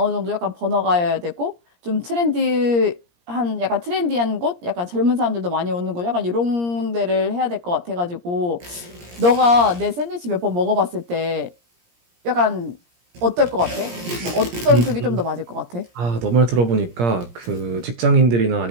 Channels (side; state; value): left; late; 17 ms